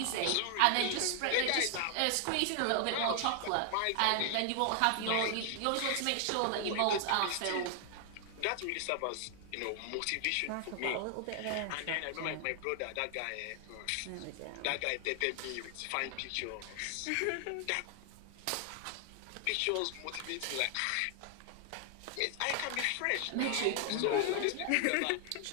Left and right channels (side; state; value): both; different; correlation 0.00